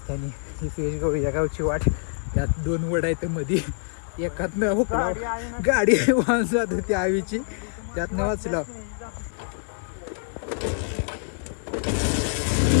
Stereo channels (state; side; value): silent; right; digital silence